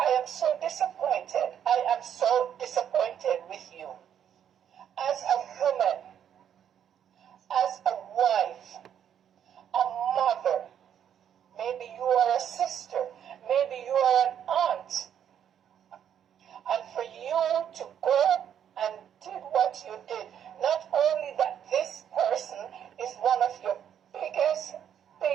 am so disappointed. I am so disappointed with you. As a woman, as a wife, a mother, maybe you are a sister, maybe you are an aunt. And for you to go and did what you did, not only that this person is one of your biggest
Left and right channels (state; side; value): quieter; left; 9.2 dB